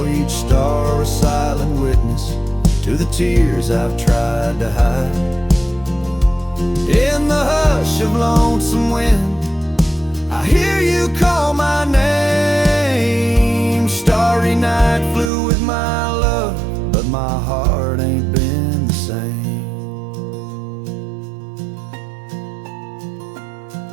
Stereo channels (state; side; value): drops out; left; at 15.3 s